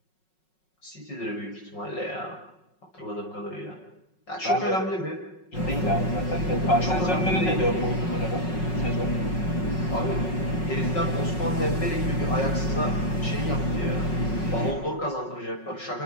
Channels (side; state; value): right; late; 5.4 ms